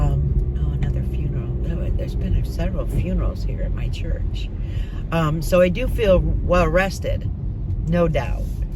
funeral. There's been several funerals here at my church. So I do feel well rested, no doubt.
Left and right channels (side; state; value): both; identical; correlation 1.00